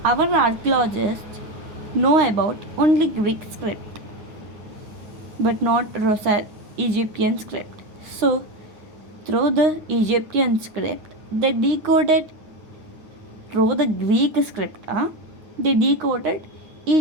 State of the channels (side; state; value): left; late; 9.5 ms